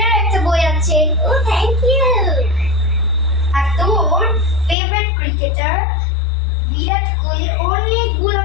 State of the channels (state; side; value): drops out; right; at 4.8 s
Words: একটা বই আছে। ও থ্যাংক ইউ। আর তোর ফেভারিট ক্রিকেটার বিরাট কোহলির অনেকগুলো